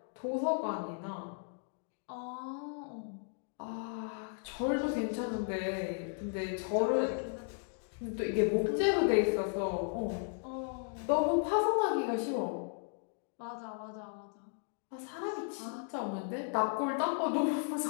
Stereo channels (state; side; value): silent; right; 54 dB below the other